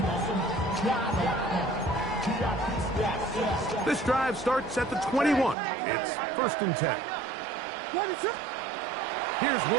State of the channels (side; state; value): left; drops out; at 5.6 s